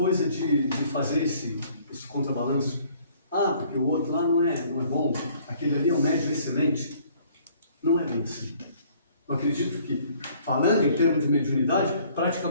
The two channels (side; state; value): both; inverted; correlation -0.58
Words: de fazer esse contrabalanço. Ah, porque o outro lá não é bom, aquele ali é um médium excelente. Não é bem assim. Eu acredito que, falando em termos de mediunidade,